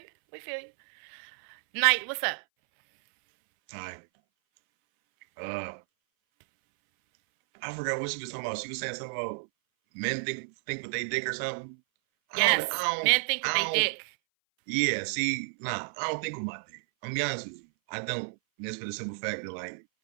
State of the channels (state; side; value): silent; left; 57 dB below the other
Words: Night. What's up? Hi. I forgot what she was talking about. She was saying something about men think with they dick or something. Yes, men think with they dick. Yeah, see, I don't think with my dick. I'm gonna be honest with you. I don't. Just for the simple fact that like